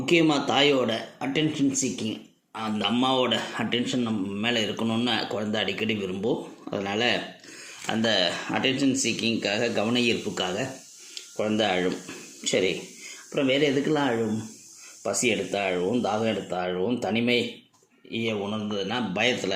தாயோட அட்டென்ஷன் சீக்கிங், அந்த அம்மாவோட அட்டென்ஷன் நம்ம மேலே இருக்கணும்னு குழந்தை அடிக்கடி விரும்பும். அதனால் அந்த அட்டென்ஷன் சீக்கிங்காக, கவன ஈர்ப்புக்காக குழந்தை அழும். சரி, அப்புறம் வேறு எதுக்கெல்லாம் அழும்? பசி எடுத்தால் அழுவும், தாகம் எடுத்தால் அழுவும், தனிமையை உணர்ந்ததுன்னா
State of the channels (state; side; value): identical; both; correlation 1.00